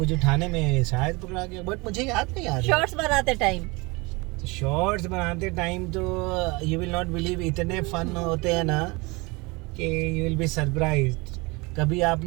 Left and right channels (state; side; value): quieter; left; 25.8 dB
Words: उठाने में शायद पकड़ा गया, बट मुझे याद नहीं आ रहा। शॉर्ट्स बनाते टाइम। शॉर्ट्स बनाते टाइम तो यू विल नॉट बिलीव, इतने फन होते हैं ना कि यू विल बी सरप्राइज्ड। कभी आप